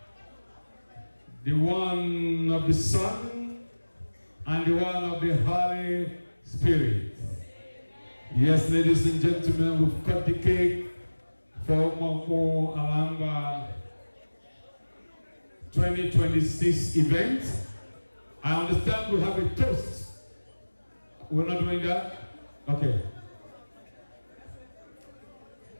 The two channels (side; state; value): both; inverted; correlation -1.00